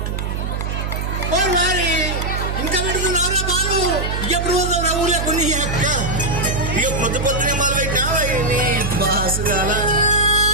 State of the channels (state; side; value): noise; right; hum, 3 dB below the sound